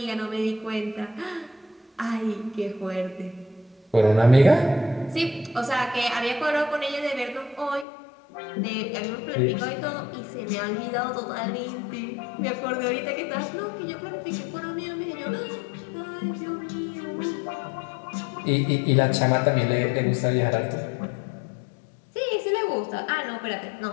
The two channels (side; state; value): right; drops out; at 7.9 s